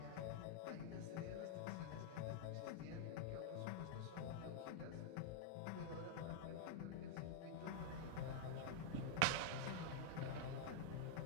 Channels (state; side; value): different; both; correlation 0.00